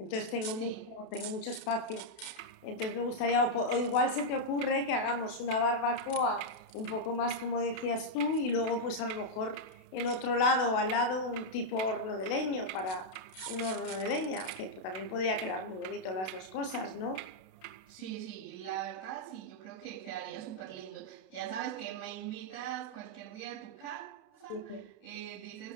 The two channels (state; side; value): late; right; 32 ms